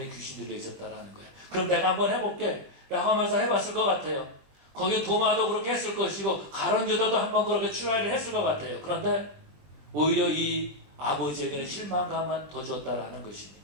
귀신 들려 있었다라는 거예요. 그럼 내가 한번 해볼게 라고 하면서 해봤을 것 같아요. 거기 도마도 그렇게 했을 것이고 가룟 유다도 한번 그렇게 트라이를 했을 것 같아요. 그런데 오히려 이 아버지에게는 실망감만 더 줬다라는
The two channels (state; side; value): late; left; 21 ms